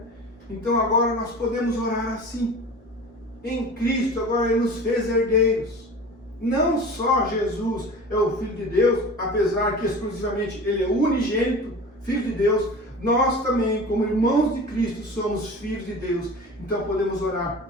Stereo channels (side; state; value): both; normal; correlation 0.37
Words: Então agora nós podemos orar assim. Em Cristo agora Ele nos fez herdeiros. Não só Jesus é o Filho de Deus, apesar que exclusivamente Ele é o unigênito, Filho de Deus, nós também, como irmãos de Cristo, somos filhos de Deus. Então podemos